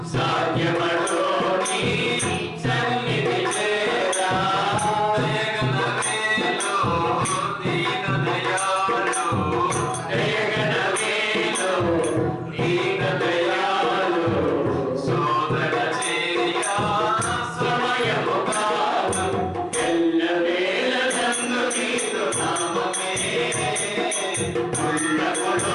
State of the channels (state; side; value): identical; both; correlation 1.00